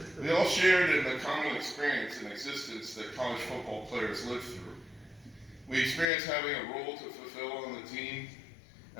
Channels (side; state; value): right; drops out; at 6.1 s